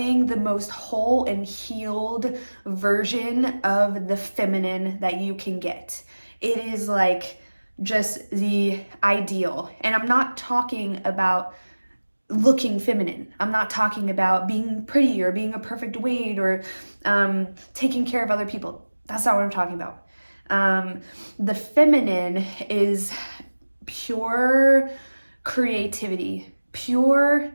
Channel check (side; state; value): both; inverted; correlation -1.00